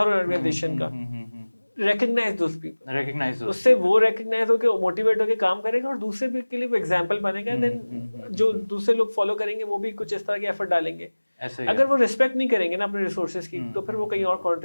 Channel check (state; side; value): inverted; both; correlation -1.00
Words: हर ऑर्गेनाइजेशन का, recognize those people, उससे वो recognize होके मोटिवेट होके काम करेगा और दूसरे भी के लिए वो एग्जांपल बनेगा। देन जो दूसरे लोग फॉलो करेंगे वो भी कुछ इस तरह के एफर्ट डालेंगे। अगर वो रिस्पेक्ट नहीं करेंगे ना अपने रिसोर्सेज की तो फिर वो कहीं और